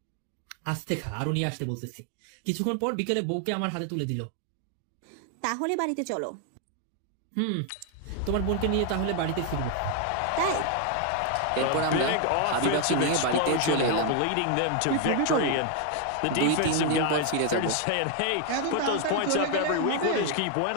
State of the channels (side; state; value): both; different; correlation 0.00